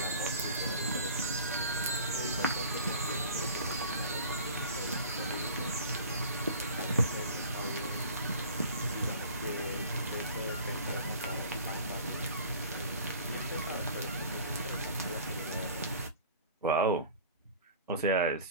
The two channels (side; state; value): both; inverted; correlation -0.43